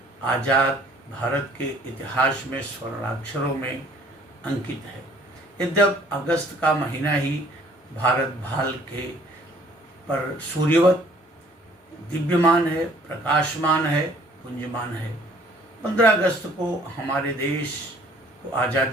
आज़ाद भारत के इतिहास में स्वर्णाक्षरों में अंकित है। यद्यप अगस्त का महीना ही भारत भाल के पर सूर्यवत दिव्यमान है, प्रकाशमान है, पुंजमान है। 15 अगस्त को हमारे देश को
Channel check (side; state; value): both; normal; correlation 0.57